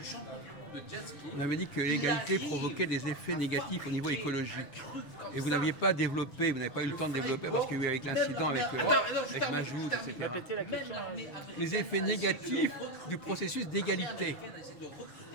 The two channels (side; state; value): right; late; 6.8 ms